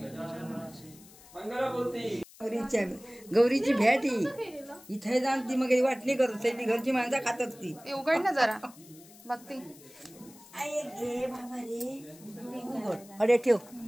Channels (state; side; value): noise; left; hiss, 22 dB below the sound